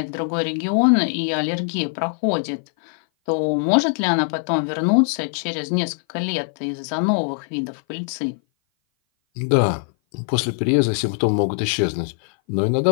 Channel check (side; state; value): right; silent; 57 dB below the other